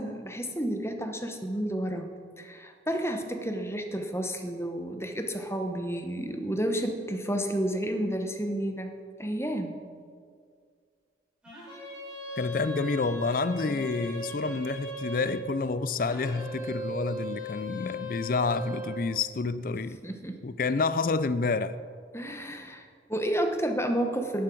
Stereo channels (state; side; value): normal; both; correlation 0.49